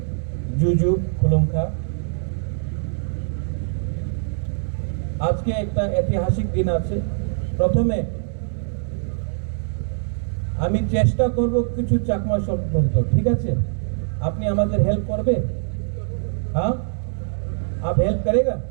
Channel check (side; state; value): left; silent; digital silence